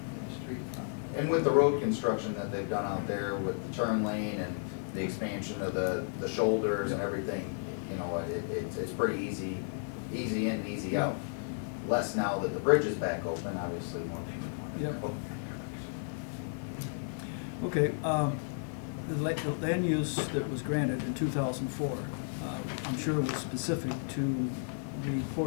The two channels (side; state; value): right; silent; digital silence